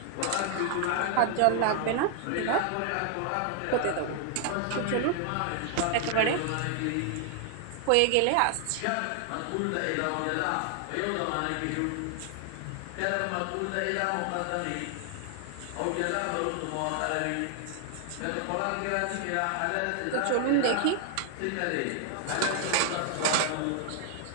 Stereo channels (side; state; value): both; different; correlation 0.00